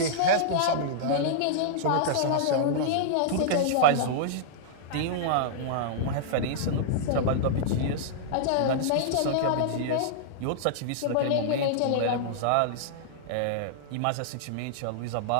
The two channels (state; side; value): different; both; correlation -0.02